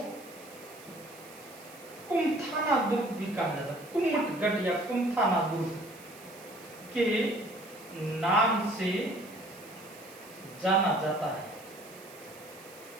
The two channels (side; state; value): right; noise; hiss, 20 dB below the sound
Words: कुमथाना दुर्ग भी कहा जाता है। कुमटगढ़ या कुमथाना दुर्ग के नाम से जाना जाता है।